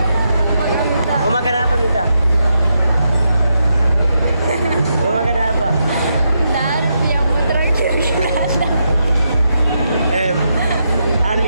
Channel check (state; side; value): inverted; both; correlation -0.82